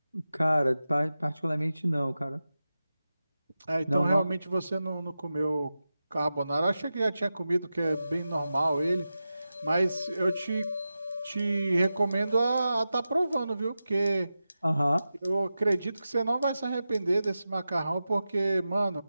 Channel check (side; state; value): both; inverted; correlation -0.92